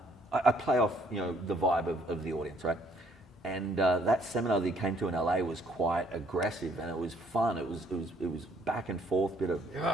I play off, the vibe of the audience, right? And that seminar that he came to in LA was quite aggressive and it was fun. It was back and forth, bit of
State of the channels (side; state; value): both; normal; correlation 0.64